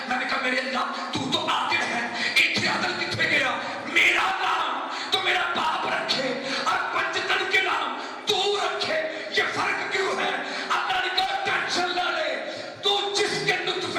میں نے کہا میرے اللہ تو عادل ہے، اتنے عدل کتنے گیا؟ میرا نام تو میرا باپ رکھے اور پنجتن کے نام تو رکھے، یہ فرق کیوں ہے؟ اللہ نے کہا ٹینشن نہ لے، تو جس کے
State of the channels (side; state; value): both; identical; correlation 1.00